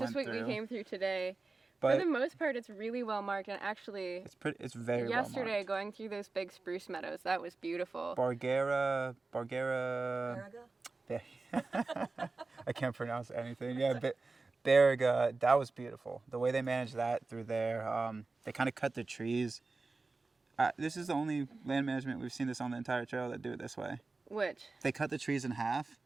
just went what through. we came through today. But For the most part, it's really well marked, and actually, it's very yesterday, well marked. going through those big spruce meadows, that was beautiful. Bargera. America? Yeah. I can't pronounce anything. Yeah, but Beriga, that was beautiful. The way they managed that through there, they kind of cut the trees. This is the only land management we've seen this on the entire trail that do it this way. Which? They cut the trees in half,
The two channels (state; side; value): quieter; left; 3.7 dB